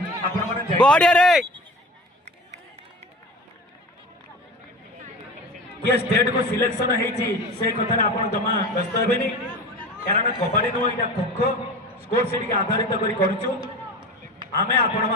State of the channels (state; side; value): normal; both; correlation 0.33